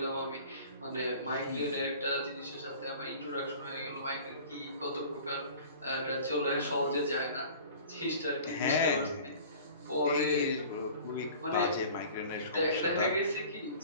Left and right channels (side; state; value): both; inverted; correlation -0.44